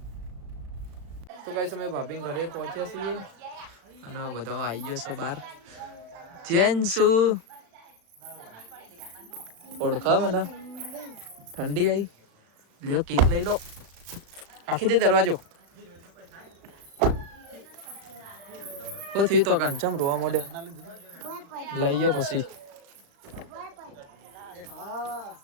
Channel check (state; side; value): late; left; 35 ms